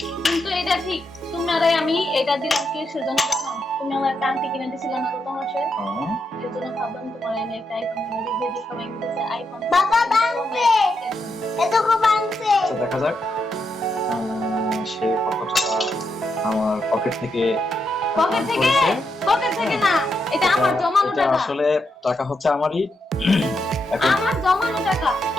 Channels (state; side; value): normal; both; correlation 0.82